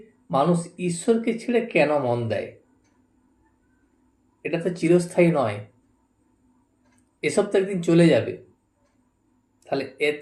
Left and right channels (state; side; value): identical; both; correlation 1.00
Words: মানুষ ঈশ্বরকে ছেড়ে কেন মন দেয়? এটা তো চিরস্থায়ী নয়, এসব তো একদিন চলে যাবে। তাহলে